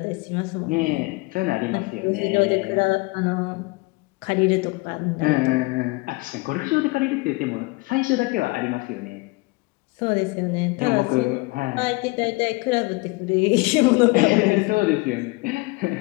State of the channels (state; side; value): quieter; right; 24.9 dB